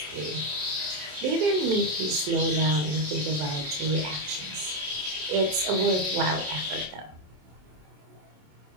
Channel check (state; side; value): late; left; 27 ms